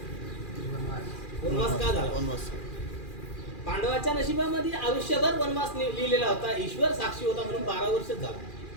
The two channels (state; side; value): late; right; 2.4 ms